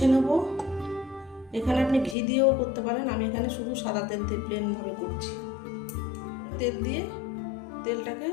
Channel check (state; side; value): drops out; right; at 2.1 s